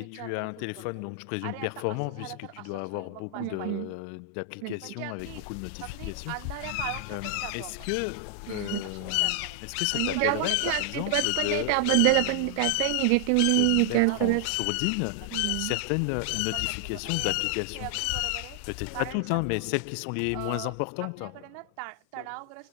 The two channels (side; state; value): both; different; correlation 0.00